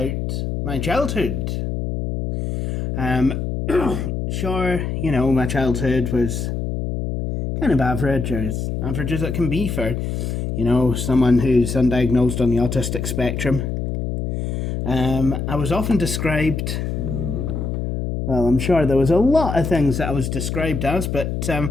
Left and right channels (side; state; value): left; noise; hum, 2 dB below the sound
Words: my childhood. Sure, my childhood was kind of average, or as average as it can be for, someone who's undiagnosed on the autistic spectrum. I was often described... Well, I'm sure there was a lot of things that I was described as, but